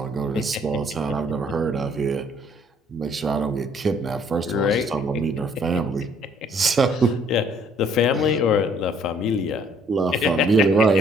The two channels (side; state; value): both; normal; correlation 0.62